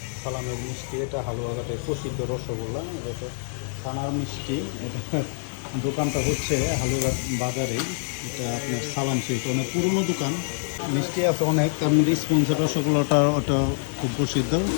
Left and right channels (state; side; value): silent; right; digital silence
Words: সালামের মিষ্টি, এটা হালুয়াঘাটের প্রসিদ্ধ রসগোল্লা। এটা ছানার মিষ্টি। এটা দোকানটা হচ্ছে হালুয়াঘাট বাজারে। এটা আপনার সালাম সুইট, অনেক পুরনো দোকান। মিষ্টি আছে অনেক, তার মধ্যে স্পঞ্জের রসগোল্লাটা ওটা খুব প্রসিদ্ধ।